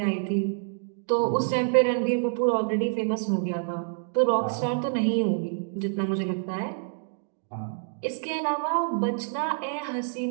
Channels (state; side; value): silent; left; 60 dB below the other